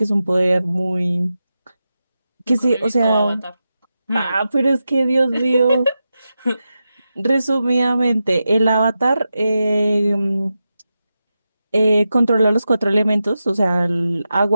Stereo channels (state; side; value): inverted; both; correlation -0.90